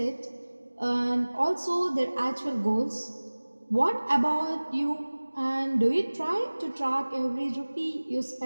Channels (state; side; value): inverted; both; correlation -1.00